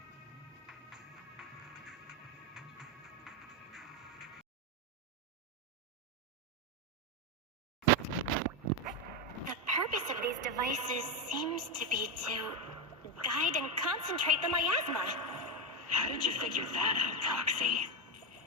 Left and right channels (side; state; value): both; normal; correlation 0.09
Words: The purpose of these devices seems to be to guide and concentrate the miasma. How did you figure that out, Proxy?